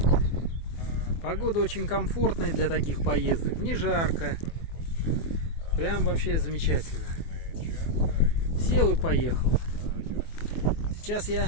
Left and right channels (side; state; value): right; late; 24 ms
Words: все. Погода очень комфортная для таких поездок, не жарко. Прям вообще замечательно. Сел и поехал. Сейчас я